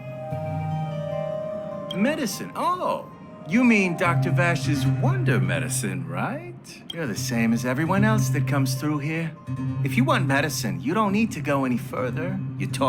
Medicine? Oh, you mean Dr. Vash's wonder medicine, right? You're the same as everyone else that comes through here. If you want medicine, you don't need to go any further. You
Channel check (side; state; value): both; identical; correlation 1.00